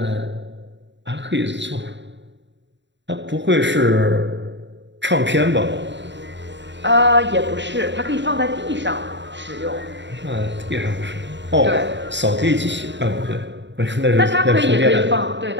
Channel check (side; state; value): left; late; 0.52 ms